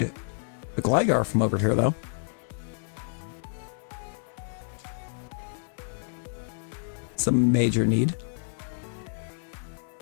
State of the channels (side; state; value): right; silent; digital silence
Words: the Gligar from over here, though. It's a major need.